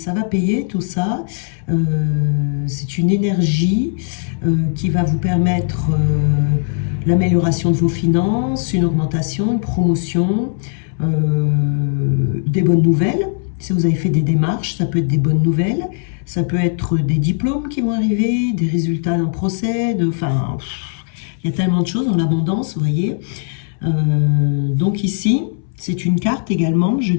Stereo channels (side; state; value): right; silent; 65 dB below the other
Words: tout ça. C'est une énergie qui va vous permettre l'amélioration de vos finances, une augmentation, une promotion, des bonnes nouvelles. Si vous avez fait des démarches, ça peut être des bonnes nouvelles. Ça peut être des diplômes qui vont arriver, des résultats d'un procès, enfin, il y a tellement de choses dans l'abondance, vous voyez. Donc ici, c'est une carte également, je